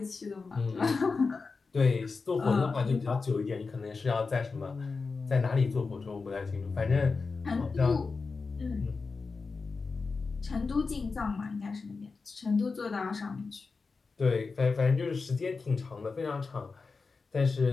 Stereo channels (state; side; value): quieter; right; 4.4 dB